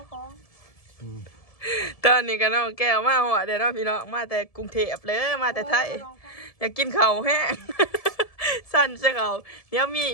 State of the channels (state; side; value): late; right; 1.7 ms